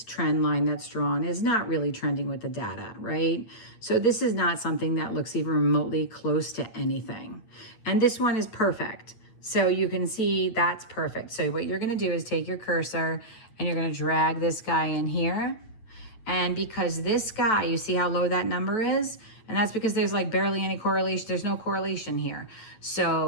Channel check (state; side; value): late; right; 9.0 ms